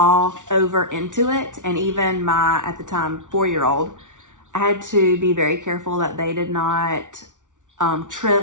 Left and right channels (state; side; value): late; left; 0.87 ms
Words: over into it. And even my, at the time, 4-year-old, I had to be very careful that they did not